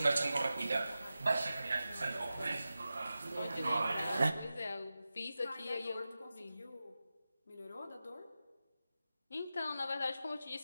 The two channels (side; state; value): both; inverted; correlation -0.93